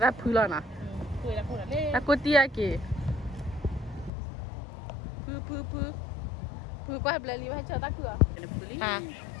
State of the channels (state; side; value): drops out; right; at 4.1 s